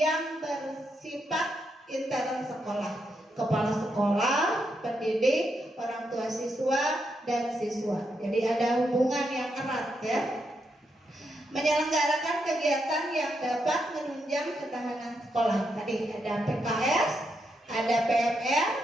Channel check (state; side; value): normal; both; correlation 0.81